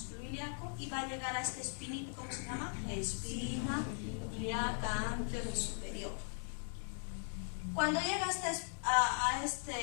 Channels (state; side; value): silent; right; 52 dB below the other